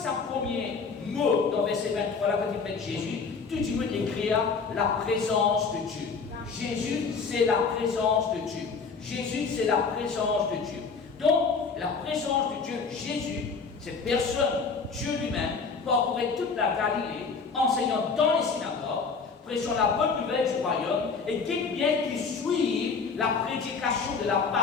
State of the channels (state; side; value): quieter; right; 5.0 dB